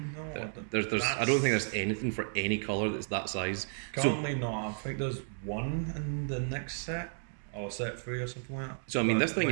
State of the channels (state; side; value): silent; left; digital silence